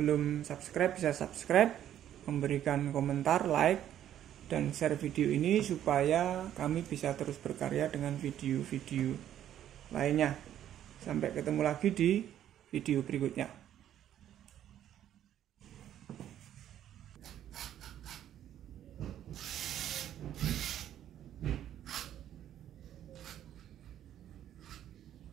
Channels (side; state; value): left; quieter; 11.0 dB